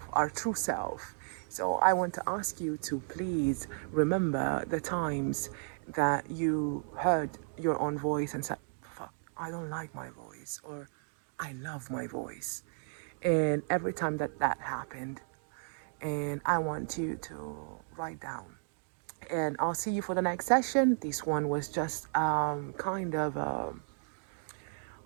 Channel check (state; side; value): silent; left; 55 dB below the other